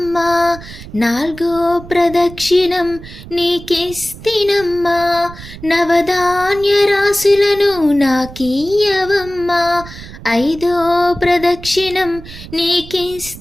నాలుగో ప్రదక్షిణం నీకిస్తినమ్మా, నవధాన్య రాశులను నాకీయవమ్మా. ఐదో ప్రదక్షిణం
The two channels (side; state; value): right; noise; rumble, 15 dB below the sound